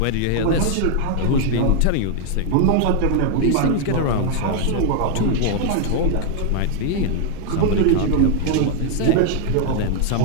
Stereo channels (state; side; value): different; both; correlation 0.00